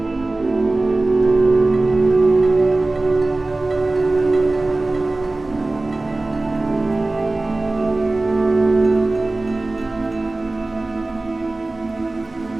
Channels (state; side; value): quieter; left; 3.0 dB